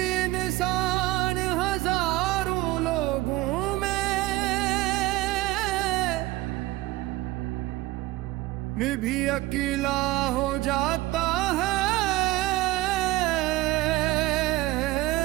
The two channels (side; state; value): left; quieter; 18.2 dB